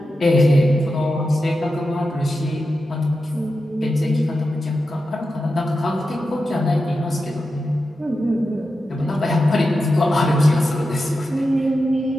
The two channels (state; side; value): normal; both; correlation 0.90